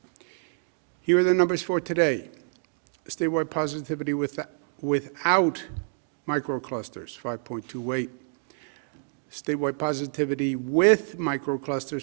Here are the numbers for today. Statewide positivity without microclusters, 5.28. Statewide positivity with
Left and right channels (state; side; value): silent; left; digital silence